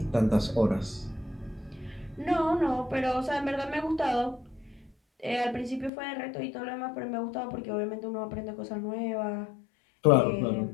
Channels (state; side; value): drops out; right; at 5.9 s